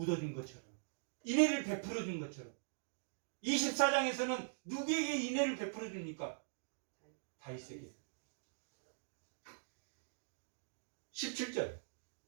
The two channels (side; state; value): left; silent; digital silence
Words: 것처럼 인애를 베풀어 준 것처럼 24장에서는 누구에게 인애를 베풀어 줍니까? 다윗에게. 17절